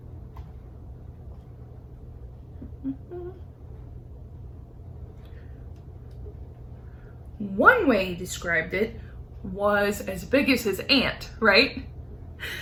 One way he described it was as big as his aunt, right?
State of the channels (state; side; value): identical; both; correlation 1.00